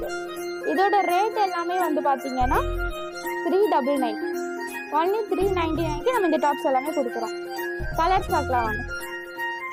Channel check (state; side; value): identical; both; correlation 1.00